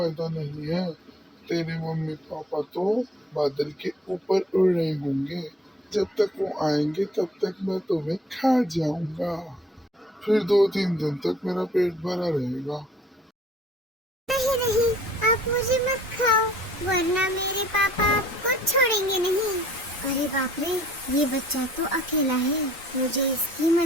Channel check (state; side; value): normal; both; correlation 0.56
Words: नहीं है। तेरे मम्मी पापा तो बादल के ऊपर उड़ रहे होंगे। जब तक वो आएंगे तब तक मैं तुम्हें खा जाऊंगा। फिर 2-3 दिन तक मेरा पेट भरा रहेगा। नहीं नहीं, आप मुझे मत खाओ, वरना मेरे पापा आपको छोड़ेंगे नहीं। अरे बाप रे, ये बच्चा तो अकेला है। मुझे इसकी